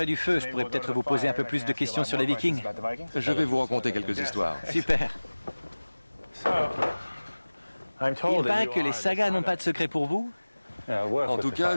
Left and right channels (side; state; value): both; inverted; correlation -1.00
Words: du feu, je pourrais peut-être vous poser un peu plus de questions sur les Vikings. Je vais vous raconter quelques histoires. Super. Il paraît que les sagas n'ont pas de secret pour vous? En tout